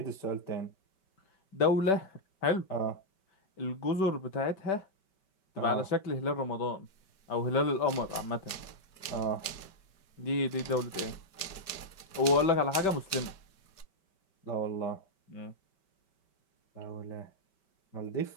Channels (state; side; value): late; right; 5.2 ms